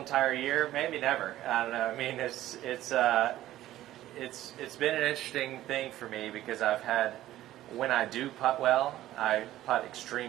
year, maybe never. I don't know. I mean, it's been an interesting thing for me because I've had, when I do putt well, I putt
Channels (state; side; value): quieter; left; 14.2 dB